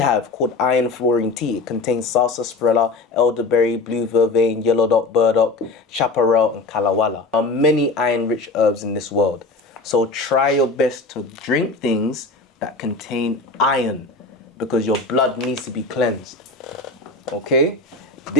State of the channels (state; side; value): quieter; right; 3.5 dB